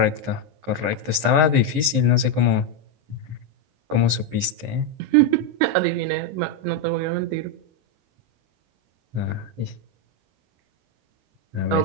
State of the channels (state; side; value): late; left; 12 ms